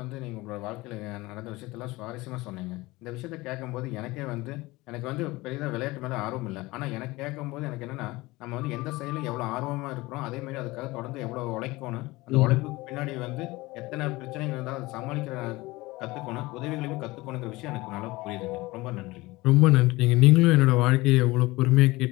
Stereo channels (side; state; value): right; quieter; 20.9 dB